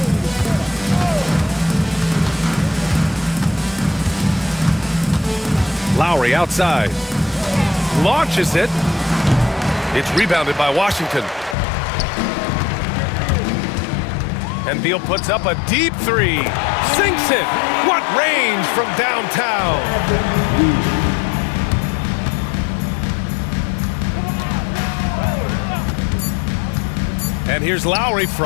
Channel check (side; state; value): right; drops out; at 11.6 s